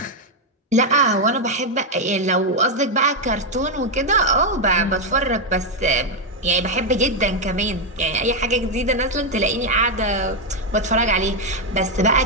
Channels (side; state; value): both; normal; correlation 0.02